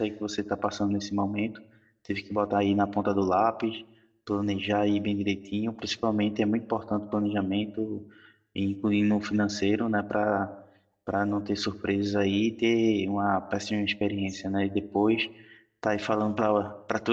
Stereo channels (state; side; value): identical; both; correlation 1.00